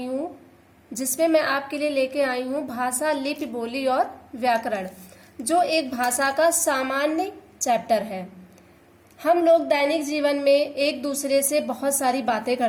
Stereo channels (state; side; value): identical; both; correlation 1.00